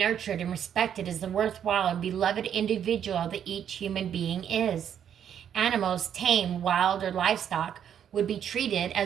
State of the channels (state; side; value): quieter; left; 9.1 dB